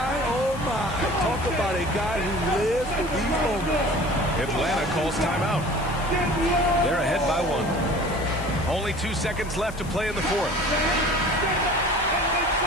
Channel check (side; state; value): left; noise; hiss, 19 dB below the sound